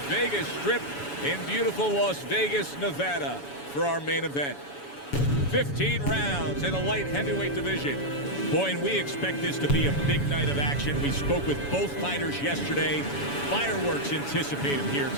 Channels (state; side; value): late; right; 7.1 ms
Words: Vegas Strip in beautiful Las Vegas, Nevada for our main event. 15 rounds in the light heavyweight division. Boy, and we expect this to be a big night of action. We spoke with both fighters yesterday. Fireworks anticipated here